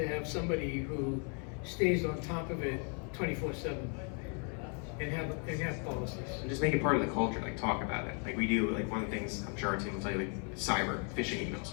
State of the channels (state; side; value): quieter; right; 39.4 dB